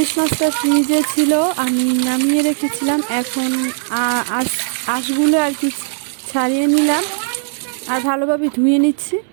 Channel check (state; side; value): silent; left; digital silence